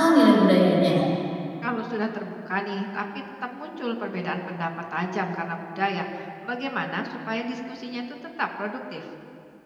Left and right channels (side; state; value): both; identical; correlation 1.00